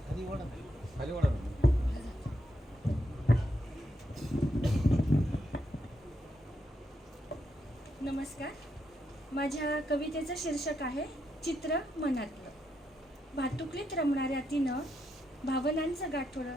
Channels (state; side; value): normal; both; correlation 0.81